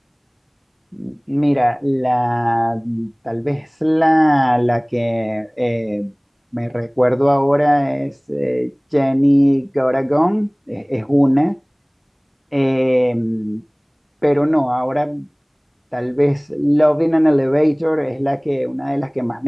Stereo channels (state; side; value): identical; both; correlation 1.00